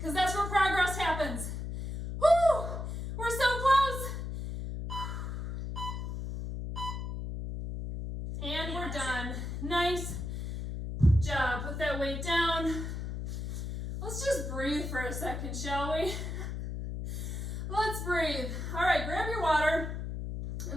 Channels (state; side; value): noise; left; hum, 5 dB below the sound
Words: that's where progress happens. Woo! We're so close. And we're done. Nice job. Put that weight down. Let's just breathe for a second, shall we? Let's breathe. All right, grab your water